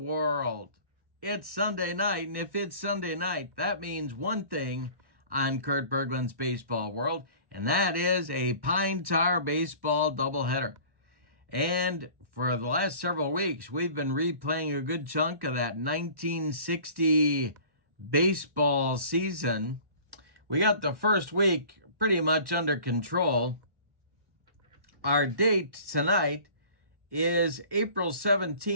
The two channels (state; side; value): late; left; 1.1 ms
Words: It's Sunday night, and if it's Sunday night, that means one thing on Kurt Berglund's Baseball World, and that is a Pine Tar baseball doubleheader. And for the last several weeks, we've been replaying a good chunk of that 1960 baseball season. We got the first week pretty much under control. Our date tonight is April